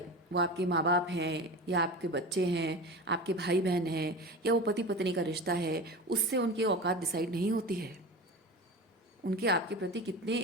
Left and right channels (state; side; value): normal; both; correlation 0.30